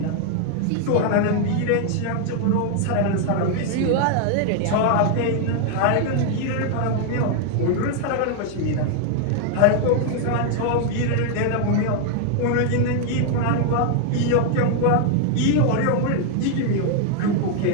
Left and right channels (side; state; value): both; different; correlation 0.00